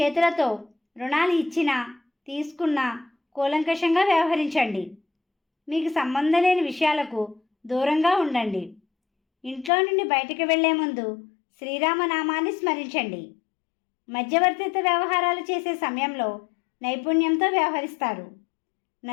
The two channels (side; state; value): right; drops out; at 9.7 s